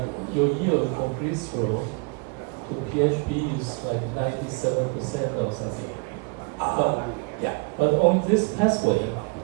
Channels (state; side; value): quieter; left; 33.1 dB